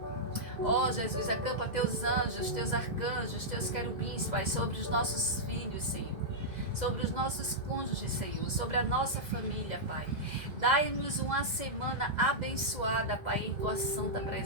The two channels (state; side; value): late; left; 2.0 ms